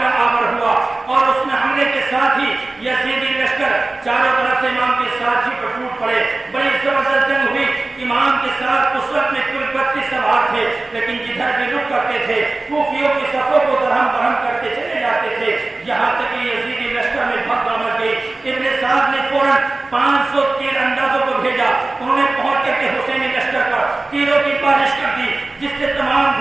آور ہوا اور اس میں حملے کے ساتھ ہی یزیدی لشکر چاروں طرف سے امام کے ساتھ ہی پر ٹوٹ پڑے. بڑی زبردست جنگ ہوئی. امام کے ساتھ اس وقت میں کل 32 سوار تھے لیکن جدھر بھی رک کرتے تھے کوفیوں کی صفوں کو درہم برہم کرتے چلے جاتے تھے. یہاں تک کہ یزیدی لشکر میں بھگدڑ مچ گئی. ابن سعد نے فوراً 500 تیر اندازوں کو بھیجا. انہوں نے پہنچ کر کے حسینی لشکر پر تیروں کی بارش کر دی جس سے تمام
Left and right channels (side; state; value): left; quieter; 3.1 dB